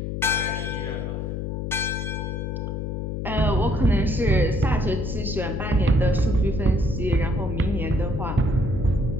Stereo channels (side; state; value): left; noise; hum, 3 dB below the sound